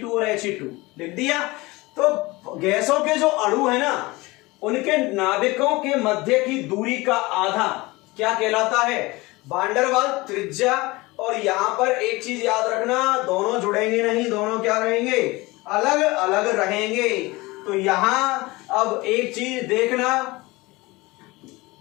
और He2 लिख दिया। तो गैसों के जो अणु है ना, उनके नाभिकों के मध्य की दूरी का आधा क्या कहलाता है? वान डेर वाल त्रिज्या। और यहां पर एक चीज याद रखना, दोनों जुड़ेंगे नहीं, दोनों क्या रहेंगे? अलग अलग रहेंगे। तो यहां अब एक चीज देखना,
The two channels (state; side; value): quieter; right; 22.2 dB